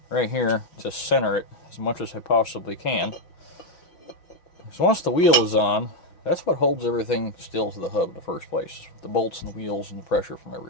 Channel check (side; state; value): right; late; 6.2 ms